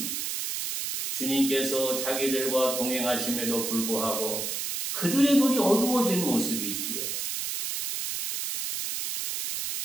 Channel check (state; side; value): noise; right; hiss, 3 dB below the sound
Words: 주님께서 자기들과 동행하심에도 불구하고 그들의 눈이 어두워진 모습이지요.